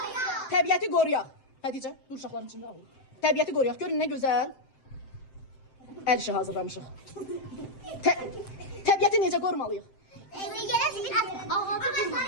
Təbiəti qoruyaq. Xədicə, dur uşaqların içində alın. Təbiəti qoruyaq. Görün nə gözəl əl işi hazırlamışıq. Təbiəti necə qorumalıyıq?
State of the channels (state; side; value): late; right; 7.7 ms